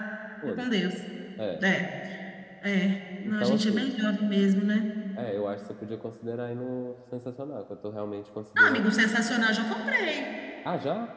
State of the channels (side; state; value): both; identical; correlation 1.00